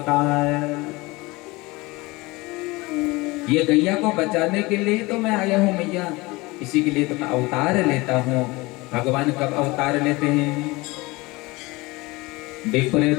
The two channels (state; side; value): quieter; right; 22.8 dB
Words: ये गैया को बचाने के लिए तो मैं आया हूँ मैया, इसी के लिए तो मैं अवतार लेता हूँ। भगवान कब अवतार लेते हैं?